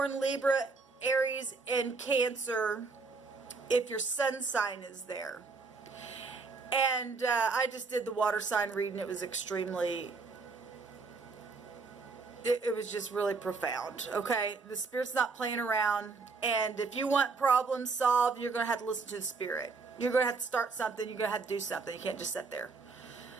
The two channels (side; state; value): left; quieter; 4.3 dB